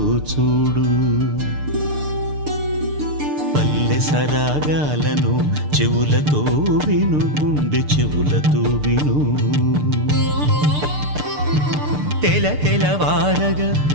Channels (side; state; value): left; late; 6.7 ms